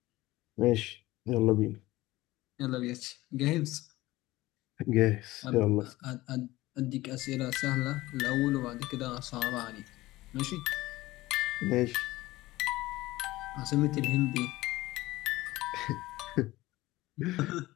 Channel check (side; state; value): right; quieter; 18.2 dB